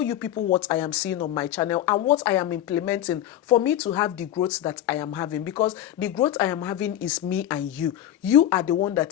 you people what I am seeing on my channel and what I am implementing for me to have the growth that I am having, because the growth I am having is me and you. You are the one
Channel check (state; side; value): quieter; right; 11.9 dB